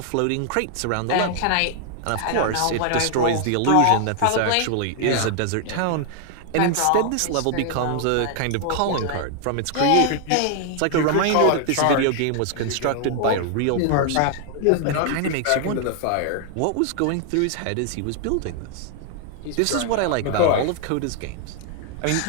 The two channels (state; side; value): different; both; correlation 0.00